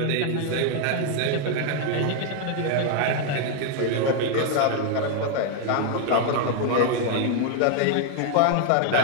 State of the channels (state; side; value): different; both; correlation 0.00